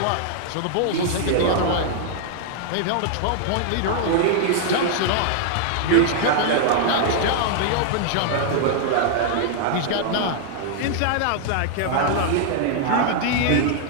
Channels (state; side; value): different; both; correlation -0.01